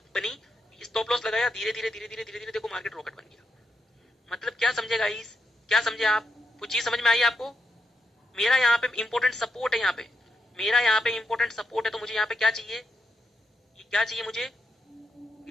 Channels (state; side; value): normal; both; correlation 0.83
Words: बनी, स्टॉप लॉस लगाया, धीरे धीरे देखो मार्केट रॉकेट बन गया। मतलब क्या समझे गाइस? क्या समझे आप? कुछ चीज समझ में आई आपको? मेरा यहाँ पे इंपॉर्टेंट सपोर्ट है, यहाँ पे मेरा यहाँ पे इंपॉर्टेंट सपोर्ट है, तो मुझे यहाँ पे क्या चाहिए? ये क्या चाहिए मुझे?